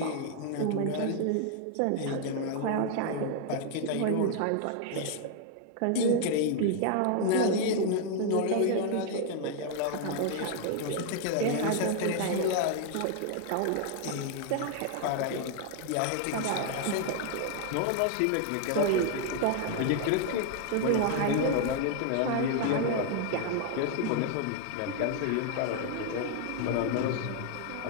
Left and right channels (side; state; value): both; different; correlation 0.00